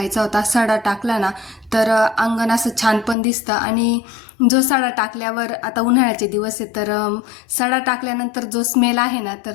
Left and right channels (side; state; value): right; drops out; at 3.2 s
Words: होता. सडा टाकला ना तर अंगण असं छान पण दिसतं. आणि जो सडा टाकल्यावर, आता उन्हाळ्याचे दिवस आहे तर सडा टाकल्यानंतर जो स्मेल आहे ना